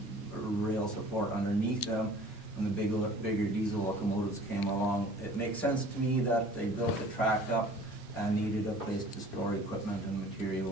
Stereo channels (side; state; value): both; normal; correlation 0.48